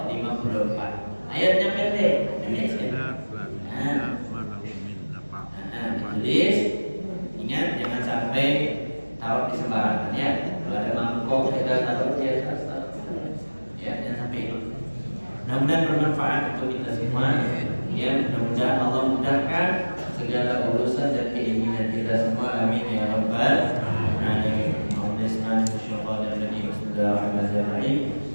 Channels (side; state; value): both; inverted; correlation -1.00